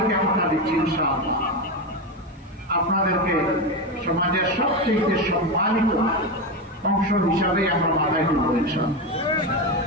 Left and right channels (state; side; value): normal; both; correlation 0.15